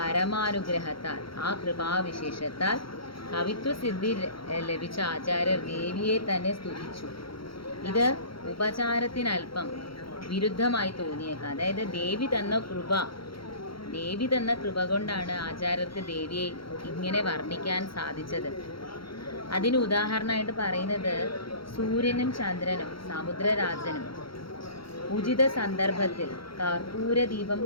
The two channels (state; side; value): late; right; 0.74 ms